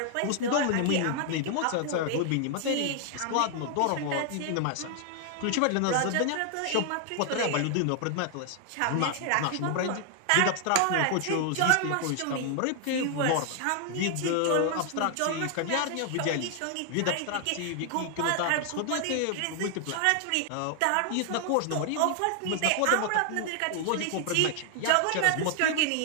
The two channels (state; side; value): different; both; correlation 0.00